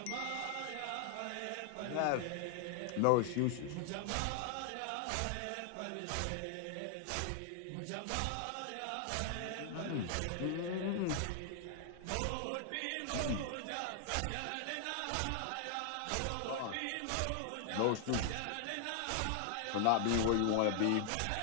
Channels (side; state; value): both; different; correlation 0.00